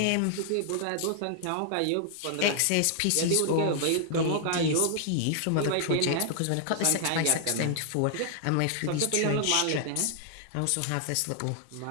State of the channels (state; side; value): different; both; correlation 0.00